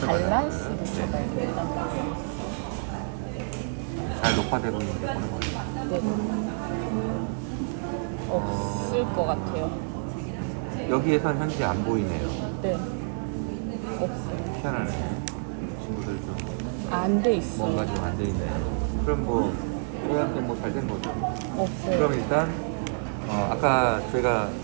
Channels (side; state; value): left; silent; digital silence